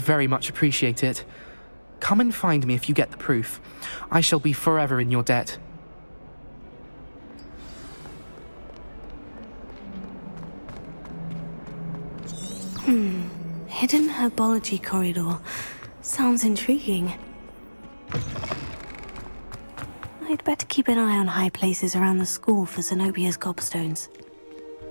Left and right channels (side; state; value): both; inverted; correlation -1.00